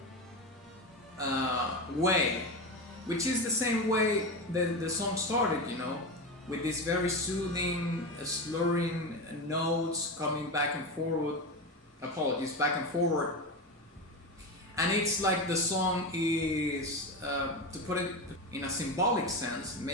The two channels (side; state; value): both; normal; correlation 0.19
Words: way, which is the same way the song started, you know, with these very soothing, slurring notes coming back and forward. Apologies, back and forward. And it's like the song is, to put it in a symbolic sense,